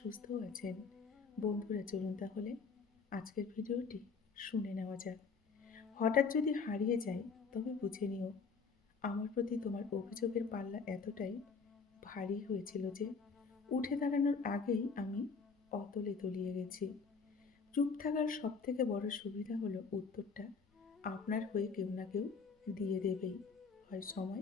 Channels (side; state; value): right; quieter; 5.1 dB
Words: আছেন। বন্ধুরা, চলুন তাহলে আজকের ভিডিওটি শুনে নেওয়া যাক। হঠাৎ যদি হারিয়ে যাই তবে বুঝে নিও আমার প্রতি তোমার অভিযোগের পাল্লা এতটাই ভারী হয়েছিল যে উঠে দাঁড়ানোর আগেই আমি অতলে তলিয়ে গেছি। চুপ থাকার সবথেকে বড় সুবিধা হলো উত্তরটা আপনার হয়ে কেউ না কেউ দিয়ে দেবেই, হয়